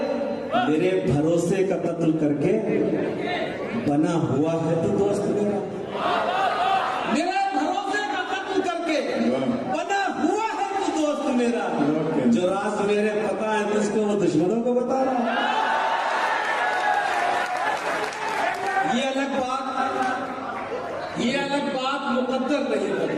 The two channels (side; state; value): both; identical; correlation 1.00